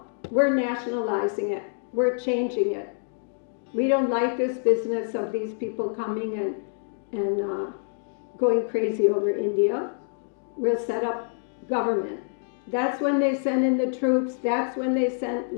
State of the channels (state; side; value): silent; right; digital silence